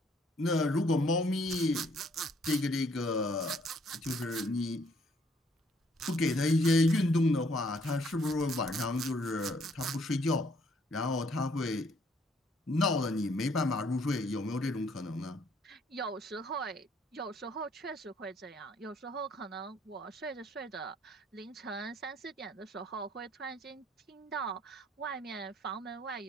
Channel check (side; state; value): both; normal; correlation 0.65